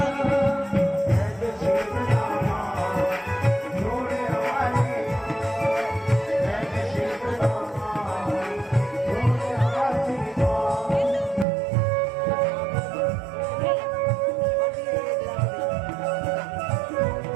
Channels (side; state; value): left; drops out; at 11.5 s